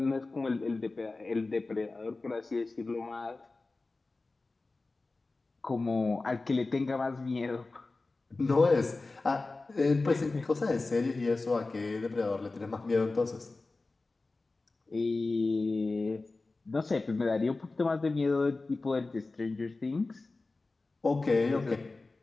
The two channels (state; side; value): quieter; right; 3.5 dB